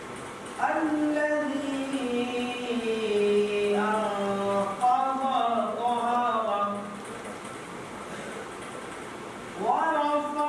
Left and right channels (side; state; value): both; identical; correlation 1.00